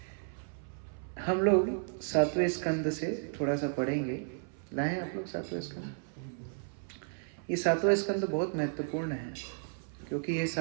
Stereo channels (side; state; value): left; silent; 56 dB below the other